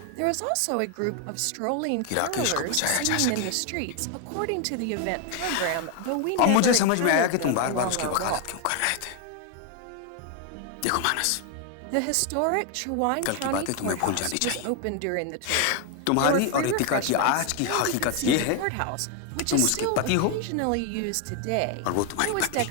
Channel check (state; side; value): different; both; correlation 0.01